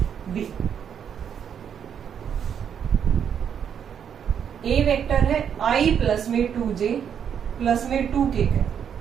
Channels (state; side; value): quieter; left; 8.2 dB